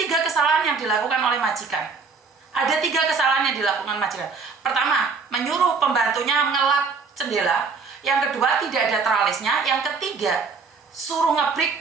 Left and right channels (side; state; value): left; quieter; 4.9 dB